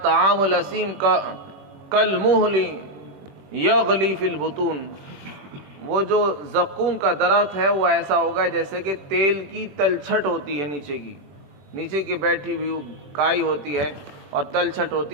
طعام الاسیم کالمہل یغلی فی البطون، وہ جو زقوم کا درخت ہے وہ ایسا ہوگا جیسے کہ تیل کی تلچھٹ ہوتی ہے، نیچے کی بیٹھی ہوئی کائی ہوتی ہے اور تلچھٹ ہوتی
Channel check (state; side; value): late; left; 21 ms